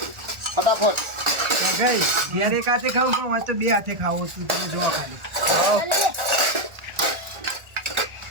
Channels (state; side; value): late; left; 1.4 ms